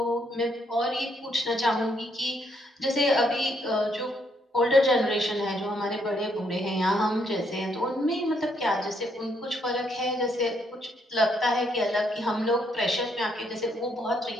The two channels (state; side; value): normal; both; correlation 0.73